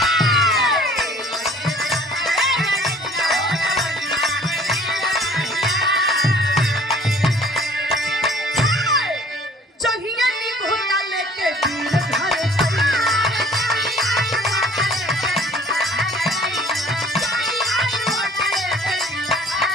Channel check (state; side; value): normal; both; correlation 0.53